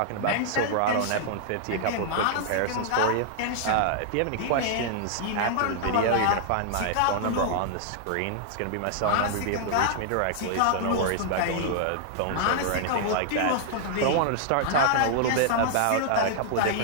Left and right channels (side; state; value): both; different; correlation -0.01